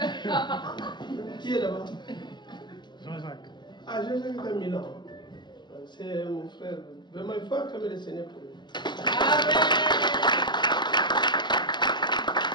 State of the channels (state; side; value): late; right; 0.21 ms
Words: Qui est là-bas? Jean-Jacques. Ah, Jean-Jacques est à Milan. C'est mon frère. Vraiment, il faut acclamer le Seigneur pour lui. Amen.